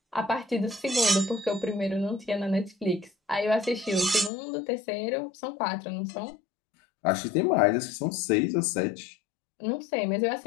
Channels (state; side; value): drops out; right; at 4.3 s